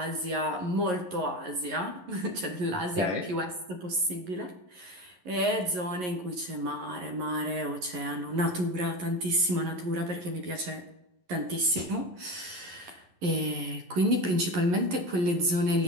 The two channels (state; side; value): late; left; 11 ms